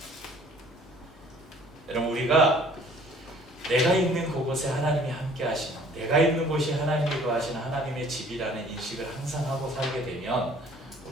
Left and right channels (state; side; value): normal; both; correlation 0.55